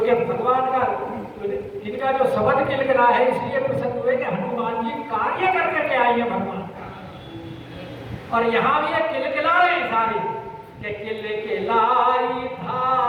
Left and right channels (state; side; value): identical; both; correlation 1.00